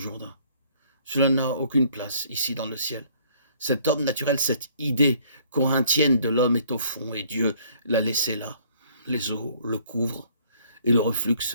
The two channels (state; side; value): inverted; both; correlation -0.60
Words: Cela n'a aucune place ici dans le ciel. Cet homme naturel, cette idée corinthienne de l'homme est au fond et Dieu l'a laissé là. Les eaux le couvrent et le reflux